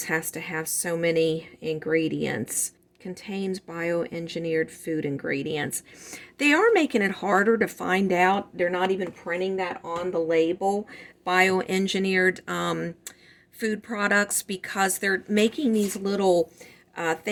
has to have so many ingredients. Contains bioengineered food ingredients. They are making it harder to find out. They're not even printing that on the label, bioengineered food products, because they're making these little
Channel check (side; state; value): both; identical; correlation 1.00